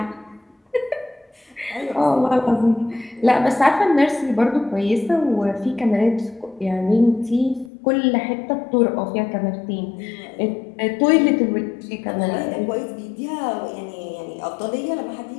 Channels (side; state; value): right; drops out; at 7.7 s